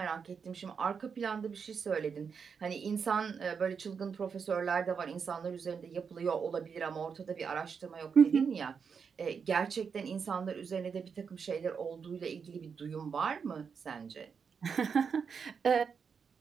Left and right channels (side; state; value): left; quieter; 6.2 dB